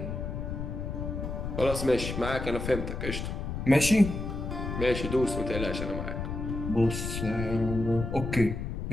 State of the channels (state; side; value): noise; left; rumble, 4 dB below the sound